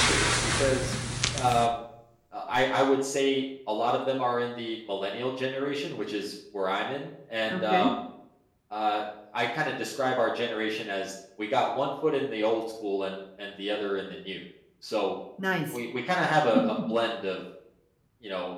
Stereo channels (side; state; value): both; identical; correlation 1.00